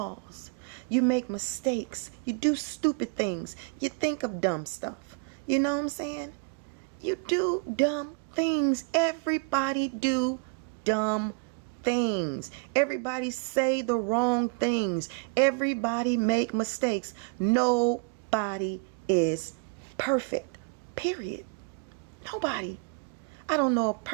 You make mistakes. You do stupid things. You think of dumb stuff. You know what I'm saying? You do dumb things. Everybody do dumb things. Everybody say the wrong things. Everybody make mistakes. Nobody is perfect. Period. Nobody. I don't know a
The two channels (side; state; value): left; quieter; 33.8 dB